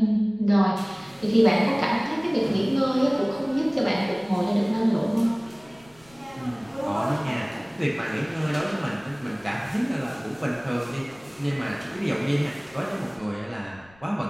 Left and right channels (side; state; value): left; noise; rumble, 27 dB below the sound